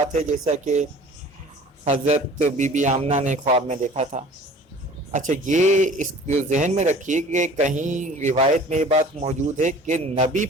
ہے جیسا کہ حضرت بی بی آمنہ نے خواب میں دیکھا تھا۔ اچھا، یہ اس کو ذہن میں رکھیے کہ کہیں روایت میں یہ بات موجود ہے کہ نبی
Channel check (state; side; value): normal; both; correlation 0.46